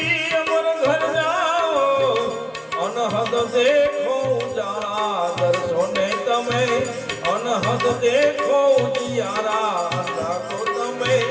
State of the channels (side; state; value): both; identical; correlation 1.00